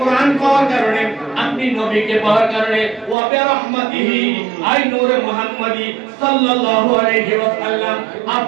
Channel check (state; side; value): drops out; left; at 3.2 s